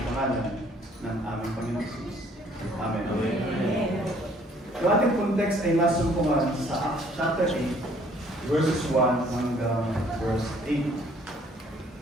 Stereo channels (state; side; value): normal; both; correlation 0.60